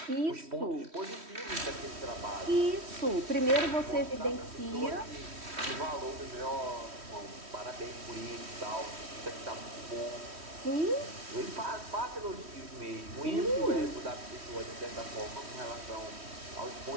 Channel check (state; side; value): late; left; 3.1 ms